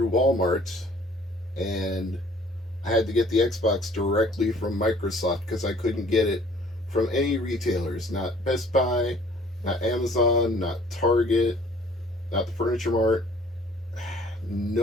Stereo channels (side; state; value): both; normal; correlation 0.55